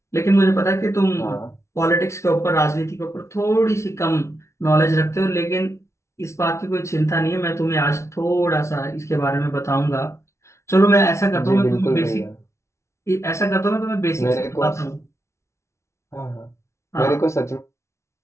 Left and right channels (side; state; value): right; late; 0.13 ms